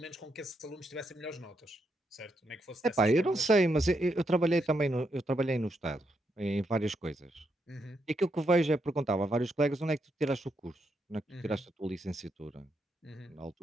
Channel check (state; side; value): normal; both; correlation 0.80